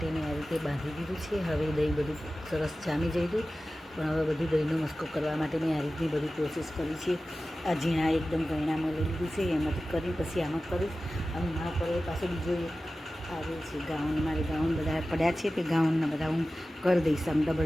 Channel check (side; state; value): both; normal; correlation 0.95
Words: મેં આ રીતે બાંધી દીધું છે. હવે દહીં બધું સરસ જામી જઈ હતું, પણ હવે બધું દહીંનો મસ્કો કરવા માટે મેં આ રીતની બધી પ્રોસેસ કરી છે. આ ઝીણા એકદમ ગયણામાં લઈ લીધું છે, એમાંથી કરી પછી આમાં કરીશ. અને મારા પર પાછો બીજો એક આવે છે ગાઉન. મારે ગાઉન બધા પડ્યા છે, તે ગાઉનના બધા હું કરી દઈશ. આમ